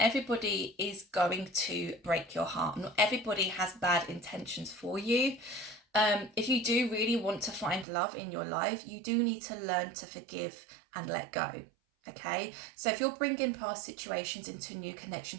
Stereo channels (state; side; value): drops out; left; at 7.9 s